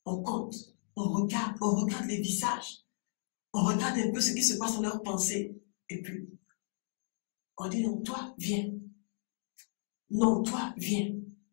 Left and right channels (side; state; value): right; silent; digital silence